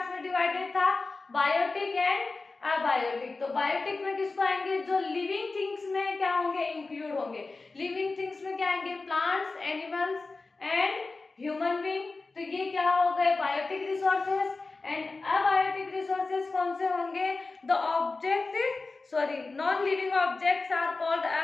में डिवाइडेड था, बायोटिक एंड अबायोटिक। तो बायोटिक में किसको आएंगे, जो लिविंग थिंग्स में क्या होंगे, इंक्लूड होंगे। लिविंग थिंग्स में क्या आएंगे, plants, animals and human being. तो ये क्या हो गए biotic resources. And abiotic resources कौन से होंगे, the non living objects are called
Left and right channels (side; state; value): right; quieter; 3.7 dB